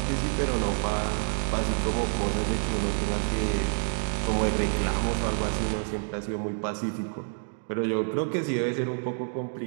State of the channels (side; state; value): left; silent; digital silence